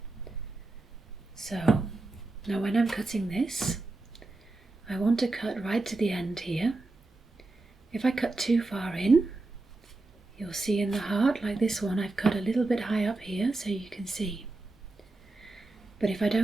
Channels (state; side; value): quieter; left; 3.2 dB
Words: So now when I'm cutting this, I want to cut right to the end here. If I cut too far in, you'll see in the heart, like this one, I've cut a little bit high up here so you can see. But if I